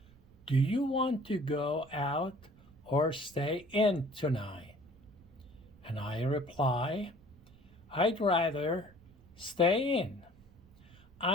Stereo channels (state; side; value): noise; right; rumble, 25 dB below the sound